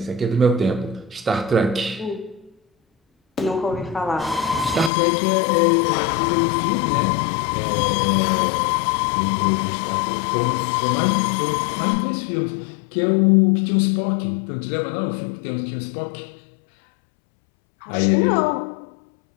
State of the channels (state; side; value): drops out; right; at 4.9 s